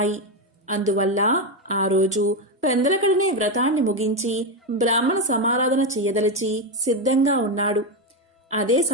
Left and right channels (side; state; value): both; normal; correlation 0.09